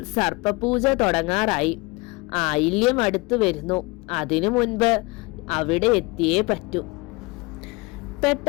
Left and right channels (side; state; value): right; quieter; 25.2 dB